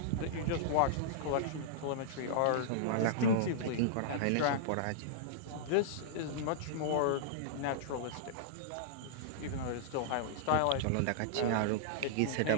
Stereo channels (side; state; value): both; different; correlation -0.02